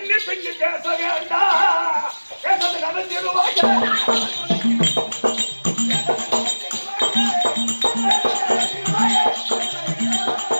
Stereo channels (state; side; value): inverted; both; correlation -1.00